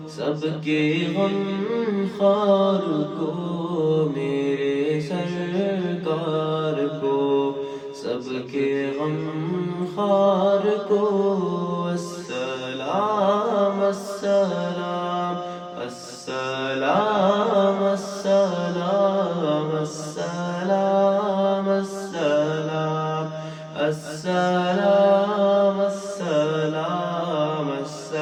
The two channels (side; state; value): both; identical; correlation 1.00